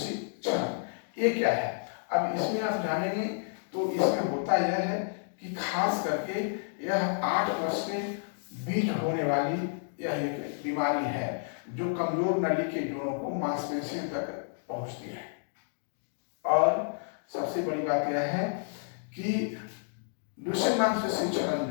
क्षरण, ये क्या है? अब इसमें आप जानेंगे तो इसमें होता यह है कि खास करके यह 8 वर्ष के बीच होने वाली यह एक बीमारी है जो कमजोर नली के जोड़ों को मांसपेशियों तक पहुंचती है। और सबसे बड़ी बात यह है कि ड्यूशेन मांसपेशी क्षरण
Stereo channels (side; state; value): right; silent; digital silence